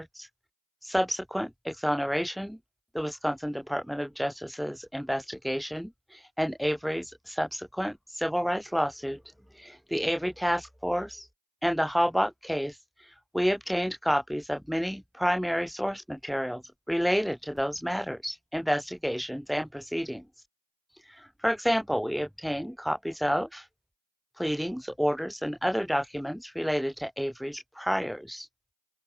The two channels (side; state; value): both; identical; correlation 1.00